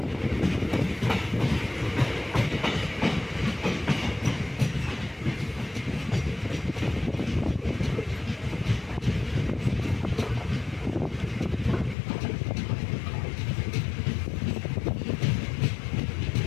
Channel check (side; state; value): right; drops out; at 12.0 s